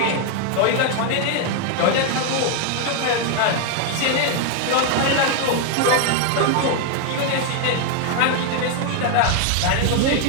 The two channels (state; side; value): different; both; correlation 0.01